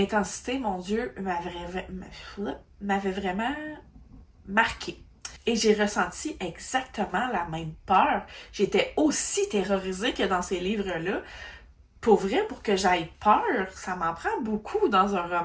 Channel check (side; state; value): both; identical; correlation 1.00